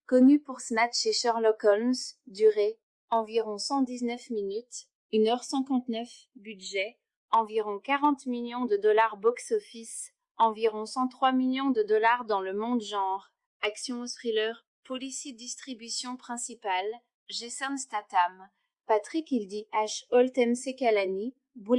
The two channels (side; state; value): both; identical; correlation 1.00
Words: connu pour Snatch et Sherlock Holmes, durée, environ 119 minutes, 1h59, budget, environ 40 millions de dollars box-office, environ 103 millions de dollars dans le monde genre, action ou thriller, policy distribution principale, Jason Statham, Patrick Hildy H. Holt MC Kalani,